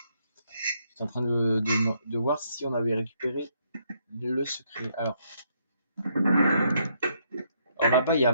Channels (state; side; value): inverted; both; correlation -0.73